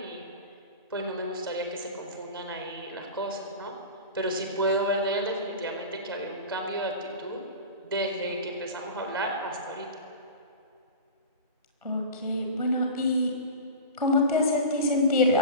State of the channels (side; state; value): both; inverted; correlation -0.31